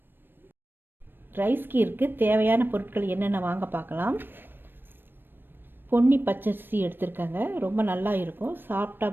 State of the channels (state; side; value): late; left; 0.096 ms